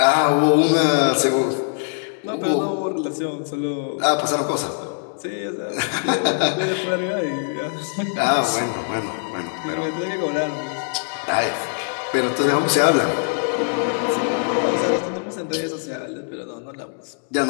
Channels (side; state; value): right; silent; digital silence